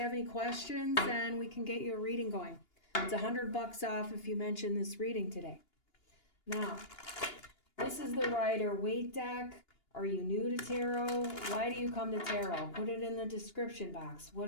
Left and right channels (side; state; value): right; late; 2.8 ms